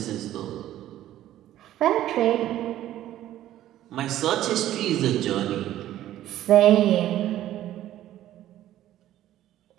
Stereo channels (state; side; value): quieter; left; 13.1 dB